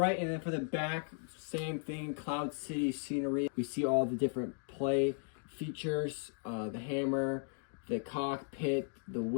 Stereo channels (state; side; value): silent; right; 54 dB below the other